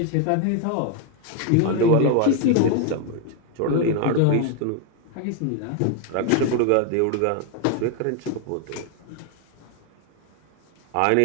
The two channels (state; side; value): different; both; correlation 0.01